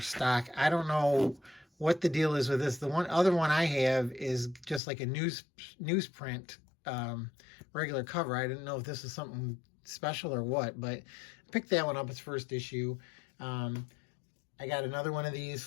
I don't know what the deal is with this. The other one I have is just like a newsprint regular cover. I didn't know if this is something special or what, but I picked that one up. It's first issue. I got another one of these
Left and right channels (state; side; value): drops out; right; at 4.8 s